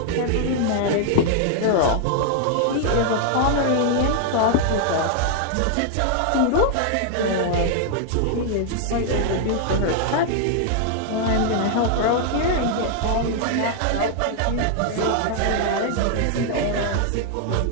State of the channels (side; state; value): both; different; correlation 0.00